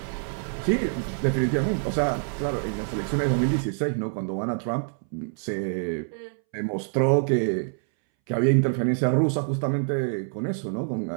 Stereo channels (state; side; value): silent; left; 61 dB below the other